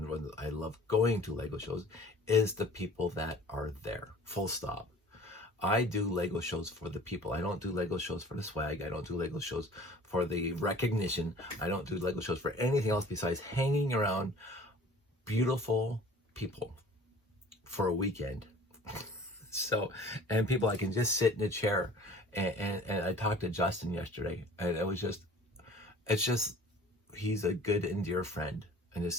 when I love going to Lego shows, is the people that are there. Full stop. I do Lego shows for the people. I don't do Lego shows for the swag. I don't do Lego shows for the recognition. I don't do Lego shows for anything else besides hanging around beautiful people for a weekend. So, and people, I can just sit in a chair, and I talked to Justin yesterday, and it's just, he's a good and dear friend, and just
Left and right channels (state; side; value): normal; both; correlation 0.47